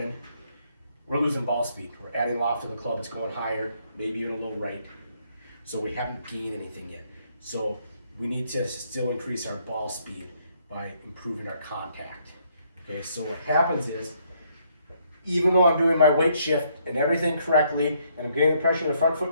we're losing ball speed. We're adding loft to the club, it's going higher, maybe even a little right. So we haven't gained anything yet. So we need to still increase our ball speed by improving our contact. Okay, so what happens is, even though I'm doing my weight shift and everything correctly, and I'm getting the pressure in the front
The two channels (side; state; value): both; inverted; correlation -0.70